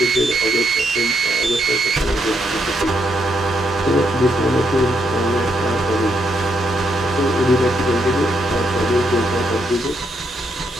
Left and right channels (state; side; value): normal; both; correlation 0.77